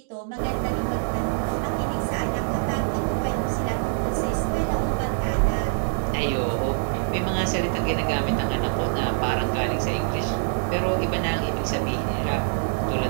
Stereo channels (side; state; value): left; silent; digital silence